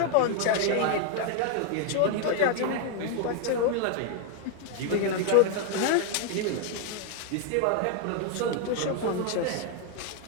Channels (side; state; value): both; different; correlation 0.00